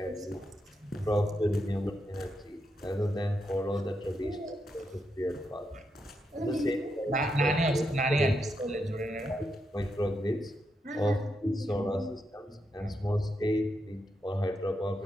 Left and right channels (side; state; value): both; normal; correlation 0.83